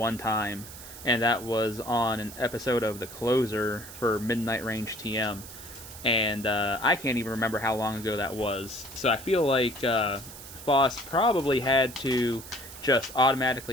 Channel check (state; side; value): noise; right; hiss, 14 dB below the sound